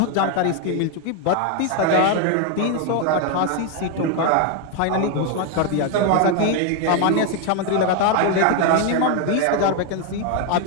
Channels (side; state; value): both; different; correlation 0.01